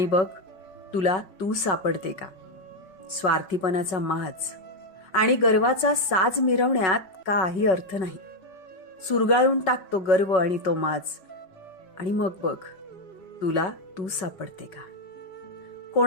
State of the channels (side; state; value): right; late; 5.3 ms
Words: बघ तुला तू सापडते का. स्वार्थीपणाचा माज आणि गर्वाचा साज मिरवण्यात काही अर्थ नाही. सुरगाळून टाक तो गर्व आणि तो माज आणि मग बघ तुला तू सापडते का.